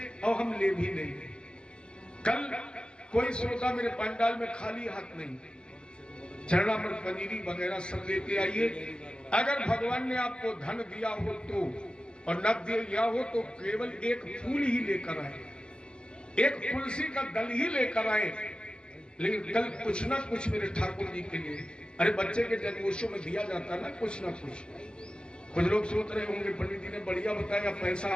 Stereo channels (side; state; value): right; late; 0.049 ms